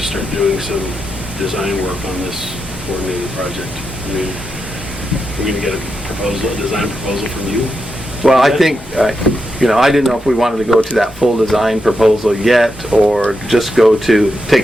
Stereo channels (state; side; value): normal; both; correlation 0.86